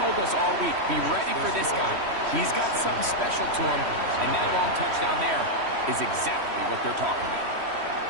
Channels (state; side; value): late; left; 3.1 ms